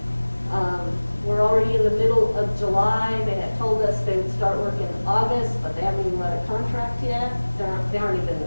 We're already in the middle of July. They had told us they would start work in August, but they haven't even let a contract yet. They aren't even.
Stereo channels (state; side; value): inverted; both; correlation -1.00